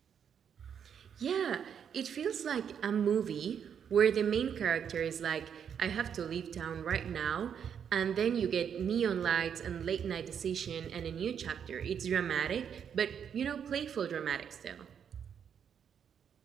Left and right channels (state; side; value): quieter; left; 7.9 dB